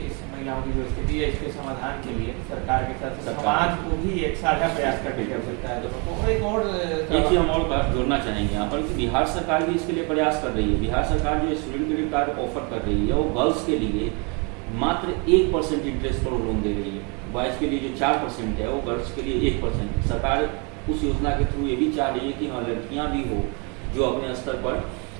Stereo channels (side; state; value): left; quieter; 32.8 dB